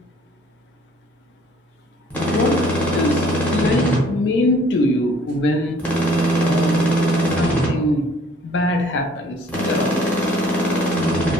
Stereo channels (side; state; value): both; normal; correlation 0.57